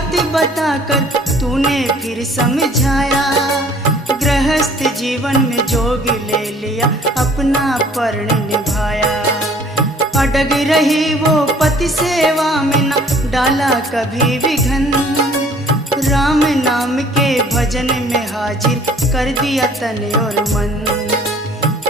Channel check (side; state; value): both; normal; correlation 0.54